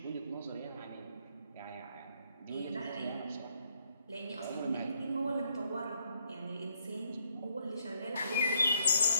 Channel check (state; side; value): inverted; both; correlation -0.71